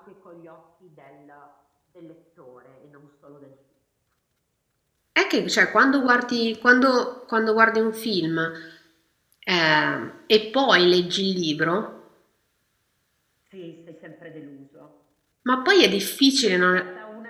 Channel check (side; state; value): both; identical; correlation 1.00